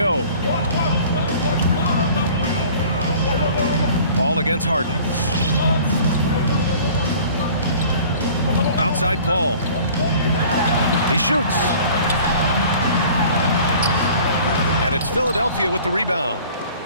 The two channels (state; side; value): inverted; both; correlation -0.47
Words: Paul against Harden. Outside Paul. He shoots. And it's Philadelphia with the rebound.